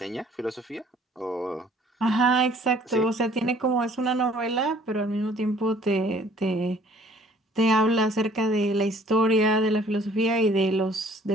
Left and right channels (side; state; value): both; normal; correlation 0.57